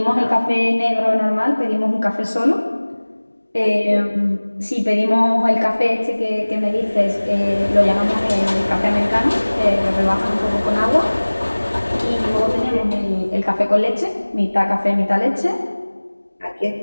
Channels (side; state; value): both; inverted; correlation -1.00